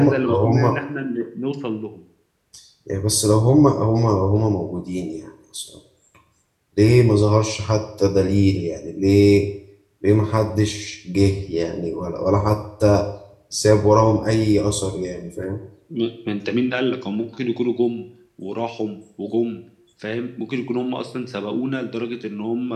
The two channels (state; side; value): identical; both; correlation 1.00